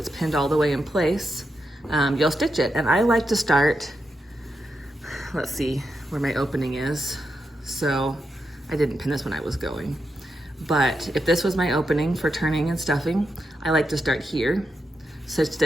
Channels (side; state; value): both; normal; correlation 0.85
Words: pinned all the way in place, you'll stitch it. And I like to start, let's see where my opening is. So I didn't pin this when I was going. But if this was my opening for turning and stuffing, I like to start here. So